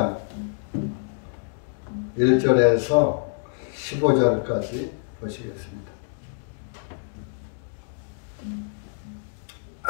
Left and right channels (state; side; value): silent; right; 61 dB below the other